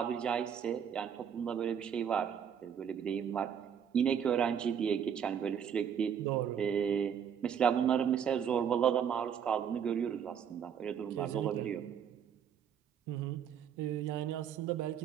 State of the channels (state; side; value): quieter; left; 8.2 dB